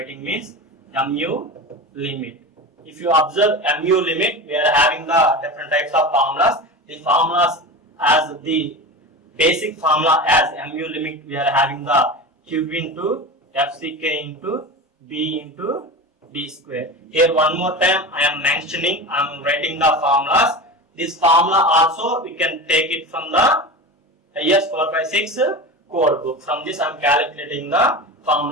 means MU limit. If you observe MU limit, we are having the different types of formulas. The formulas as the basic formula as MU limit, we are having the Q into FCK into B into D square. Here one more time I am mentioning, I am writing the formulas. This formula also we can take it from the IS 456 code book. From this I am calculating the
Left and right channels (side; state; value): both; normal; correlation 0.28